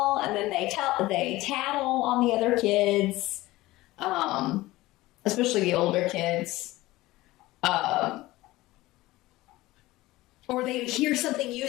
and then they tattle on the other kids, especially the older kids. Or they hear something you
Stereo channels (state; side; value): quieter; right; 18.4 dB